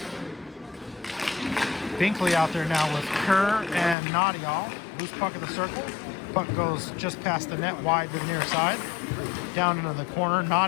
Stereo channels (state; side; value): drops out; right; at 4.0 s